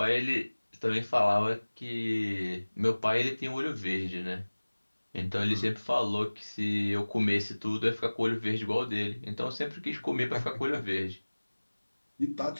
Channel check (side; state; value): both; inverted; correlation -1.00